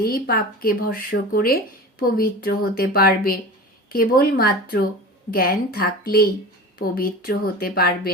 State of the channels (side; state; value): both; normal; correlation 0.33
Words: পাপকে ভস্ম করে পবিত্র হতে পারবে। কেবলমাত্র জ্ঞান থাকলেই পবিত্র হতে পারবে